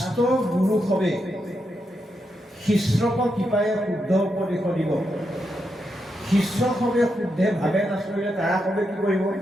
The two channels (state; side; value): normal; both; correlation 0.84